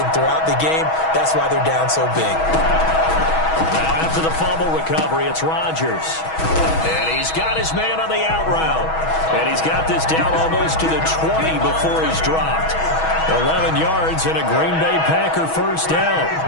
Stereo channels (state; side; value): late; right; 6.2 ms